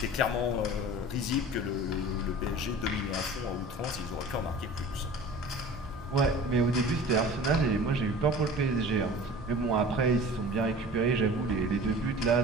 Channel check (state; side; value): normal; both; correlation 0.40